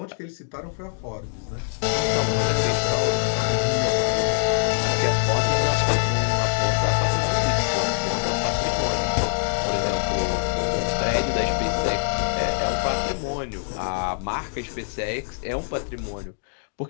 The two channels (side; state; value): right; silent; digital silence